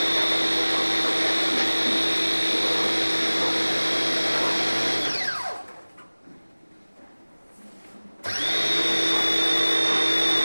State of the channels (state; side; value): inverted; both; correlation -1.00